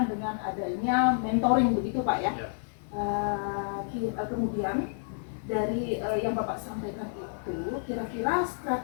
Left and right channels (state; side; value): silent; right; digital silence